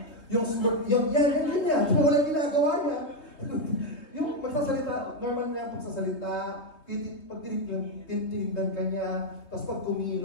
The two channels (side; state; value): right; late; 3.3 ms